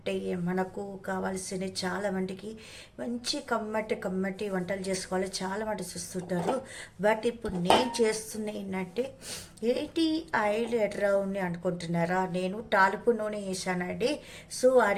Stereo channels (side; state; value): both; identical; correlation 1.00